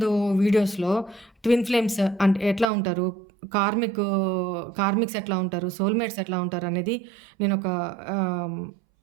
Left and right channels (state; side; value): drops out; left; at 2.7 s